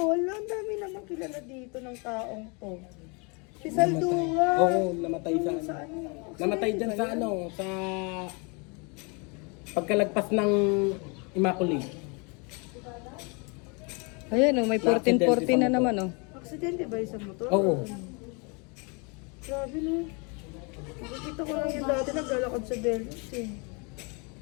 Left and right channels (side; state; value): right; quieter; 32.4 dB